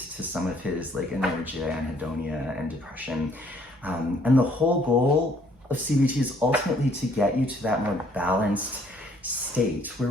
to some of his like inertia, anhedonia, and depression. And the whole goal of CBT is ultimately to get you to that more balanced state where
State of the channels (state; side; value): normal; both; correlation 0.63